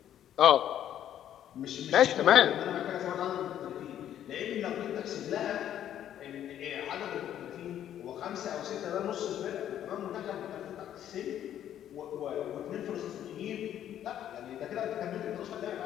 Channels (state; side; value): quieter; right; 10.8 dB